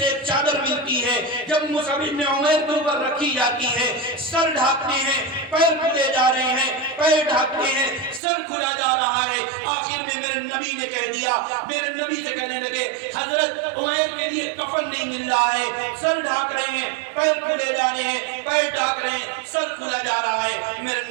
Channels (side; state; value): left; drops out; at 8.2 s